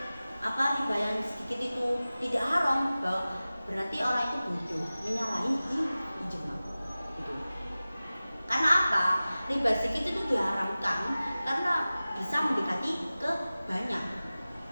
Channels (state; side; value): inverted; both; correlation -0.97